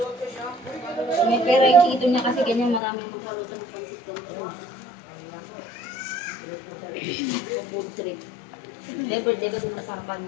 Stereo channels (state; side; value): drops out; right; at 2.8 s